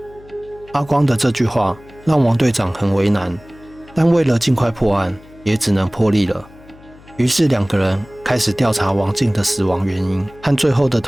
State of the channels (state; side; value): noise; left; hum, 23 dB below the sound